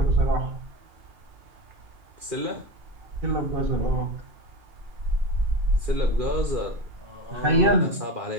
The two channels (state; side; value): late; left; 2.4 ms